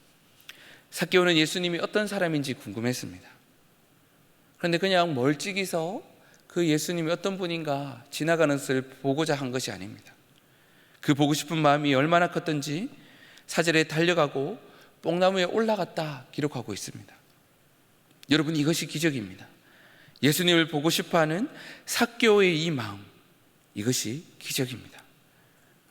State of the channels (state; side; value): identical; both; correlation 1.00